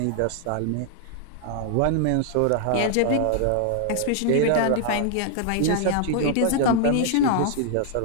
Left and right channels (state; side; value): different; both; correlation 0.00